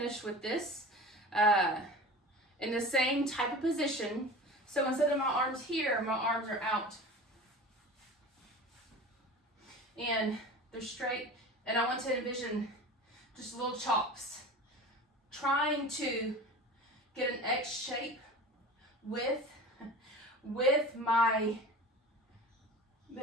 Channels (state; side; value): normal; both; correlation 0.36